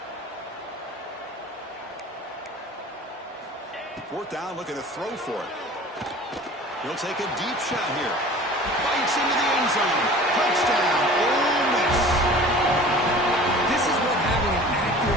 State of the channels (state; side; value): normal; both; correlation 0.43